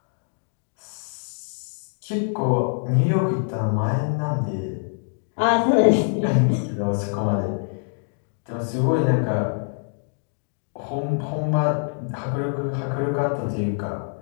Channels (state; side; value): silent; right; digital silence